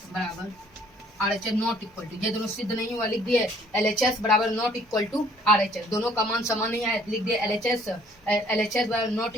RHS नॉट इक्वल टू, ये दोनों सिद्ध नहीं हुआ, लिख दिए LHS बराबर नॉट इक्वल टू RHS, दोनों का मान समान नहीं आया, लिख दिए LHS बराबर नॉट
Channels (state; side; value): normal; both; correlation 0.59